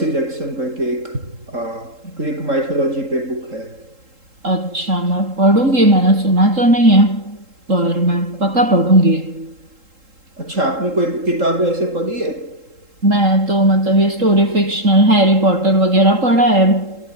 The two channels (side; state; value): left; late; 3.7 ms